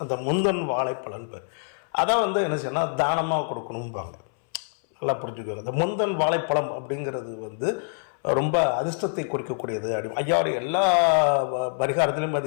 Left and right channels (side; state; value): right; silent; 61 dB below the other